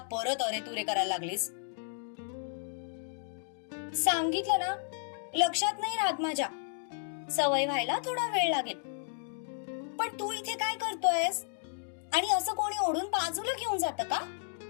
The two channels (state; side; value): silent; right; digital silence